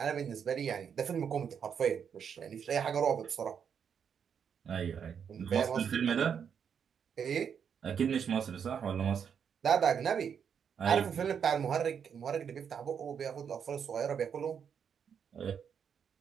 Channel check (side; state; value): left; quieter; 7.4 dB